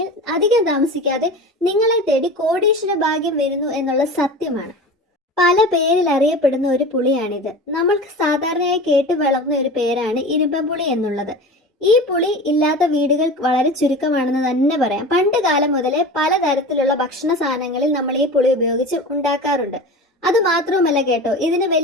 അധികം താമസിക്കാതെ നിങ്ങളെ തേടി കോടീശ്വര ഭാഗ്യം വരുന്നു എന്നുള്ള സത്യമാണ്. പല പേരിൽ അറിയപ്പെടുന്ന ഒരു പുളിയാണിത്. നമ്മൾക്ക് സാധാരണയായി കേട്ടു വളർന്ന ഒരു പേരാണ് ഇരുമ്പൻപുളി എന്നുള്ളത്. ഈ പുളി ഇല്ലാത്ത വീടുകൾ വളരെ ചുരുക്കമാണെന്ന് തന്നെ പറയാം. പണ്ട് കാലം മുതലേ പലതരത്തിലുള്ള ഭക്ഷണ സാധനങ്ങളിൽ നമ്മൾ ഈ പുളി ഉപയോഗിച്ച് ഉണ്ടാക്കാറുണ്ട്. അത് മാത്രവുമല്ല കേട്ടോ, ഇതിന്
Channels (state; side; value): normal; both; correlation 0.33